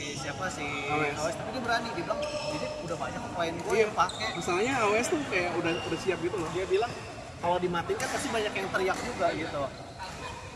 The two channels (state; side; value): identical; both; correlation 1.00